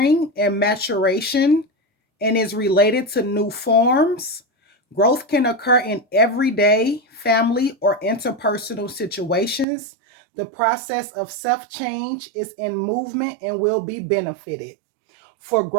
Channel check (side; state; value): left; drops out; at 9.7 s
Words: and maturation and is related to new forms. Growth can occur in everyday, family, or interpersonal situations. The process of self-change is in movement and will be benefited. For